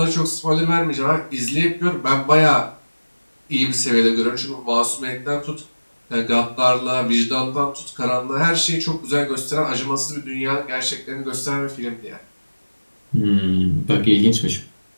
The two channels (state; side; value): inverted; both; correlation -1.00